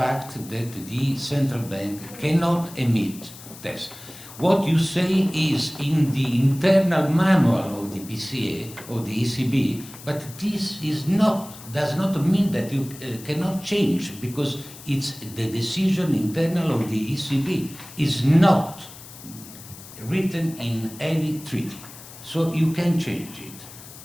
that the central bank cannot emit tests. What you say is in the internal manual of the PCA or the ECB, but this is not, does not mean that you cannot change, because it's the decision internal of the ECB is not written in any treaty. So you can change it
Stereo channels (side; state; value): left; noise; hiss, 17 dB below the sound